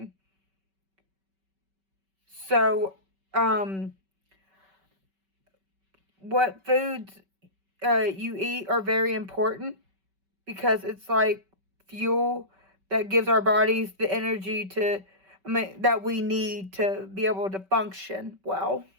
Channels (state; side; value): late; left; 5.2 ms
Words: So, what foods you eat are very important, because it's like fuel that gives our bodies the energy that we need to be able to function well.